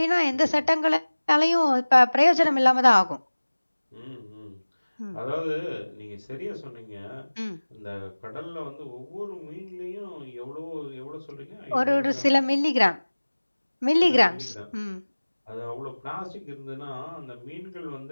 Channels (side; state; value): both; inverted; correlation -1.00